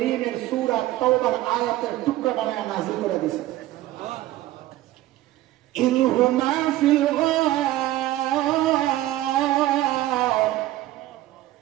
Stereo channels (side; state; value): left; quieter; 15.4 dB